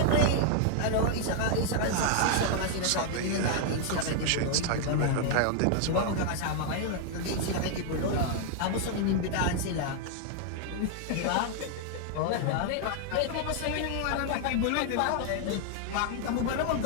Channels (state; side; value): different; both; correlation 0.00